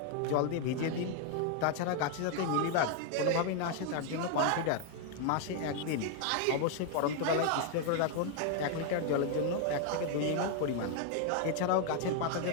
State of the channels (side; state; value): both; different; correlation 0.00